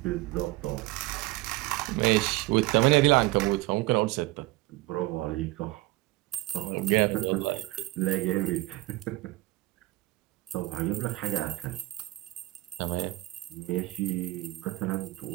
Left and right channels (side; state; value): left; quieter; 19.3 dB